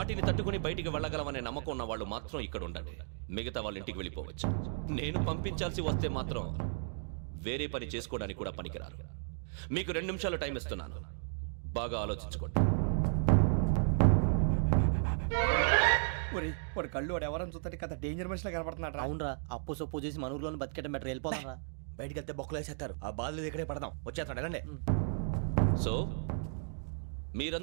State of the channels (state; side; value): silent; left; digital silence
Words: తట్టుకుని బయటికి వెళ్ళగలమనే నమ్మకం ఉన్న వాళ్ళు మాత్రం ఇక్కడ ఉండండి. మిగతా వాళ్ళు ఇంటికి వెళ్ళిపోవచ్చు. నేను పంపించాల్సి వస్తే మాత్రం వేరే పని చేసుకోవడానికి కూడా పనికిరారు. మీకు 2 నిమిషాలు టైం ఇస్తున్నాను, బాగా ఆలోచించుకోండి. వాడు కళ్ళు వాడు ఎవరైనా చూస్తే కదా డేంజర్ మనిషిలో కనపడుతున్నాడు. అవునరా, అప్పు సొప్పు చేసి మన ఊర్లో బతికేయడం బెటర్. వెళ్ళిపోతారా? బయటికి వెళ్తే బొక్కలు వేసేస్తారు. ఆ బాధలు ఇక్కడే పడదాం. వచ్చేస్తాడు ఎలాండి. సో